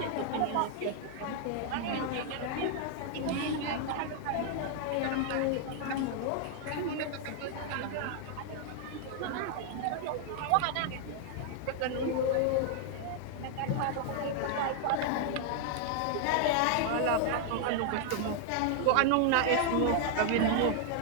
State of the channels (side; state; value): both; different; correlation 0.00